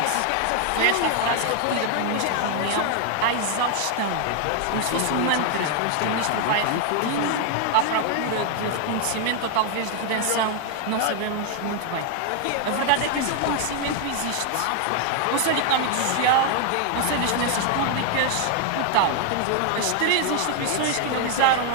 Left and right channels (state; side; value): different; both; correlation 0.00